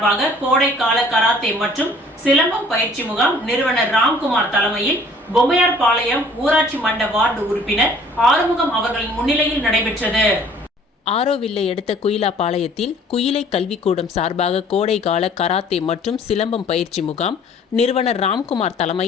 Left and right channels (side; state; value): both; normal; correlation 0.54